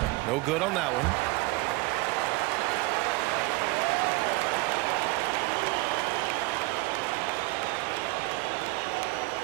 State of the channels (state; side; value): quieter; left; 22.3 dB